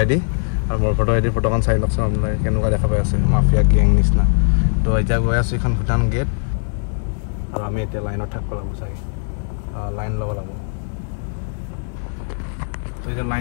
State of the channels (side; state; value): right; silent; 61 dB below the other